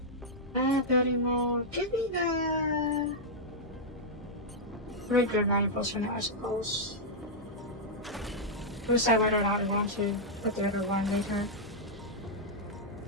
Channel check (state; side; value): normal; both; correlation -0.06